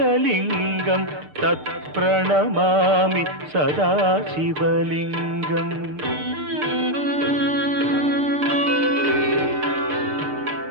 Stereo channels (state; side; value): late; left; 6.7 ms